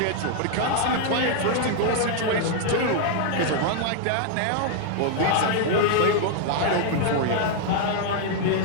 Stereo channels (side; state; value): both; different; correlation 0.00